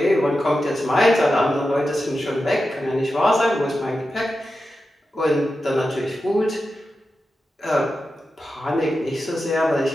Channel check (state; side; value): normal; both; correlation 0.91